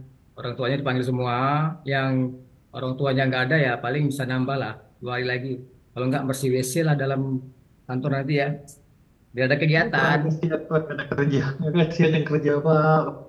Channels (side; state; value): both; identical; correlation 1.00